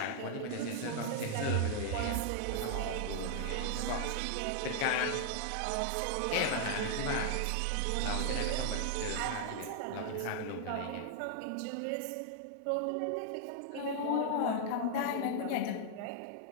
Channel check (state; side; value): different; both; correlation -0.01